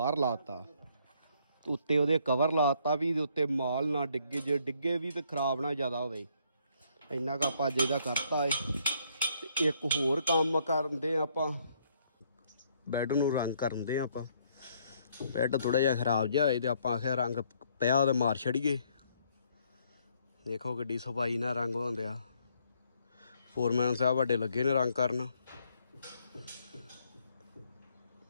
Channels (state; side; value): inverted; both; correlation -0.68